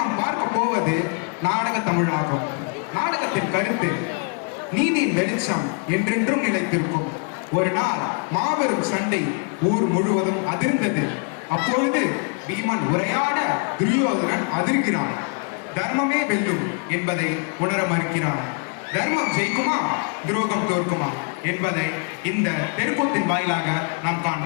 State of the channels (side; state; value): right; quieter; 39.7 dB